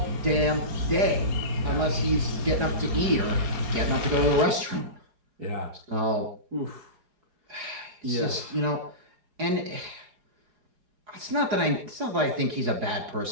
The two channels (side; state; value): left; late; 4.8 ms